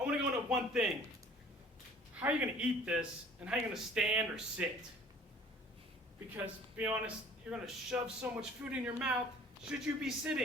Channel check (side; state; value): both; normal; correlation 0.50